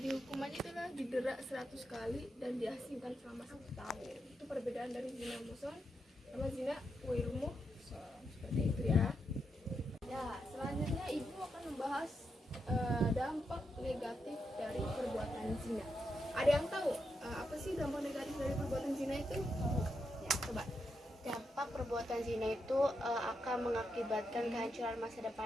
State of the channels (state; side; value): normal; both; correlation 0.84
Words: itulah didera 100 kali dan diasingkan selama 1 tahun. Itu perbedaan dari zina muhsan sama zina ghairu muhsan, seperti itu ya. Ya, selanjutnya ibu akan membahas dampak negatif dari perbuatan zina. Ada yang tahu apa sih dampak negatif dari perbuatan zina itu? Ya, coba. Dampak perbuatan zina itu akan mengakibatkan kehancuran masa